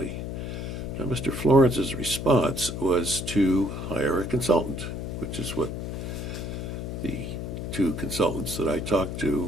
Now, Mr. Florence's response was to hire a consultant, which is what the two consultants that I talked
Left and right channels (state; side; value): noise; left; hum, 5 dB below the sound